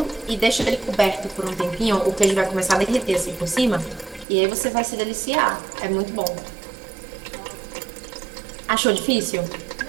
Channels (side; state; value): left; drops out; at 4.2 s